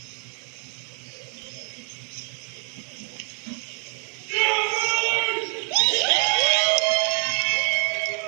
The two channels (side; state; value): left; quieter; 39.6 dB